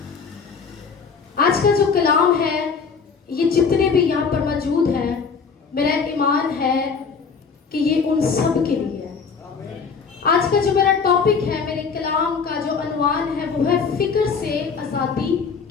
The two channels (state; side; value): quieter; right; 5.5 dB